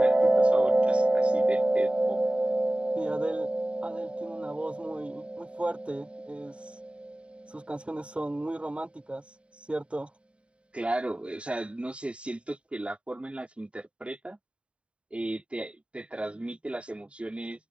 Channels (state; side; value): late; left; 0.059 ms